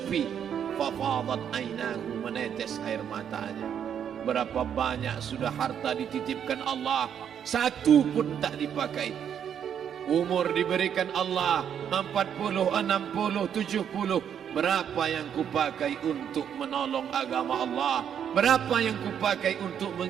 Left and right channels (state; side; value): quieter; left; 8.6 dB